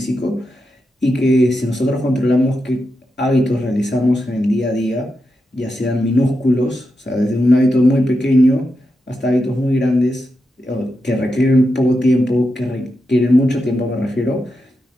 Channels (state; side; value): normal; both; correlation 0.87